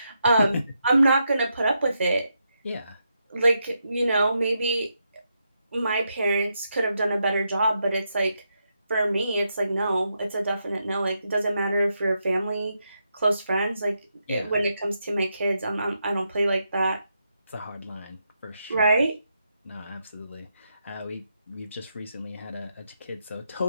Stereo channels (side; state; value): both; inverted; correlation -0.83